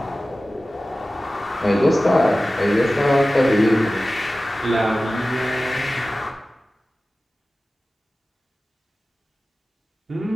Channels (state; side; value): normal; both; correlation 0.96